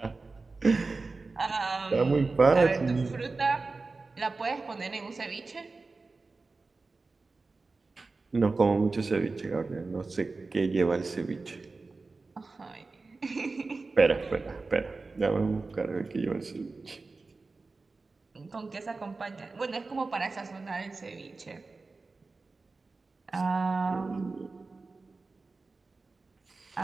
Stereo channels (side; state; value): left; quieter; 3.8 dB